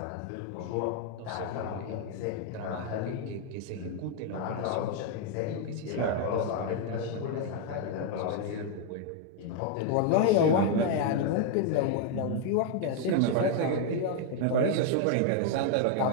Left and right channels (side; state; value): both; different; correlation 0.00